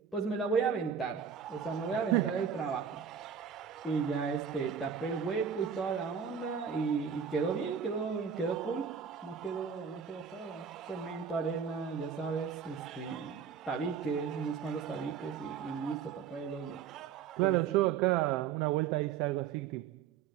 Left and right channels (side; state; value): left; quieter; 7.2 dB